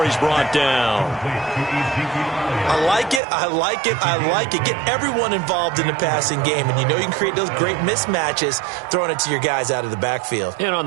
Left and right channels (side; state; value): left; drops out; at 3.2 s